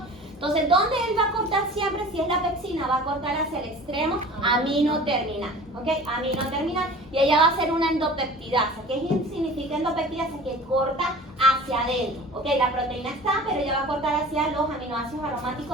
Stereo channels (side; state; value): both; normal; correlation 0.41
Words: Entonces, ¿dónde él va a cortar siempre? Si es la pexina, va a cortar hacia el extremo amino-terminal, ¿ok? Amino-terminal, y ella va a hacer una endopeptidasa. ¿Qué significa endopeptidasa? Que corta hacia adentro, ¿ok? La proteína está, pero ella va a cortar hacia los aminoácidos